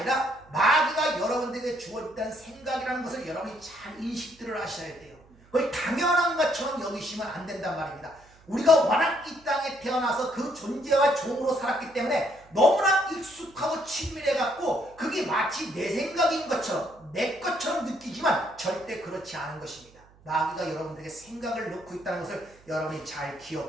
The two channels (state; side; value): noise; right; hum, 27 dB below the sound